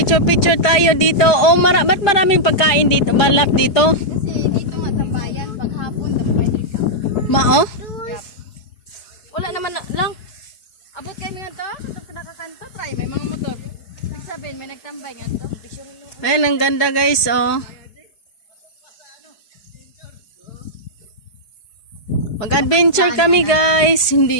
tayo dito. Oh, ba't maraming pagkain dito? Balap dito? Kasi dito nga tambayan, paghapon, dapat Ma, oh? wala naman lang. Abot kayo nga to? Ito nakakanto, try. May mga motor. Nagsabihin, may nagtambay nga to. Ayan, ang ganda guys, oh. Mag-adventure kami guys.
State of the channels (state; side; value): late; right; 4.7 ms